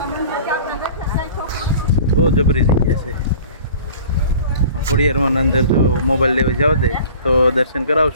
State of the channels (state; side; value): inverted; both; correlation -0.45